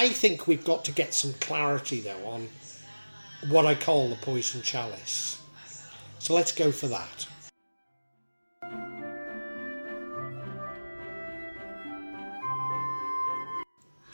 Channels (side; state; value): both; inverted; correlation -1.00